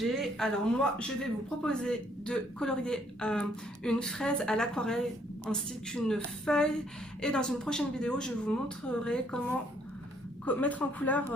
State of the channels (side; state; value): both; normal; correlation 0.67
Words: Alors moi, je vais vous proposer de colorier une fraise à l'aquarelle ainsi qu'une feuille. Et dans une prochaine vidéo, je vous montrerai comment mettre en couleur